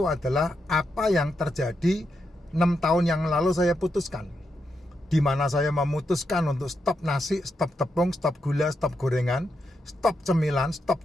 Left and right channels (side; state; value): both; normal; correlation 0.83